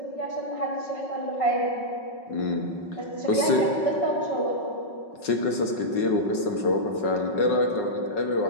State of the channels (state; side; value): late; right; 5.4 ms